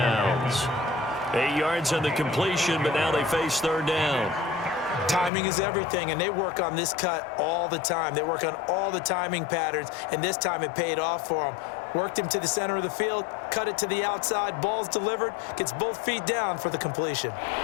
8 yards on the completion, but now they face 3rd down. Timing is everything, and they work on this cut all the time. They work on all the timing patterns, and this time it paid off for them. Worked him to the center of the field, cut it to the outside, ball's delivered, gets both feet down for the completion.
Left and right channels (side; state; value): right; drops out; at 5.3 s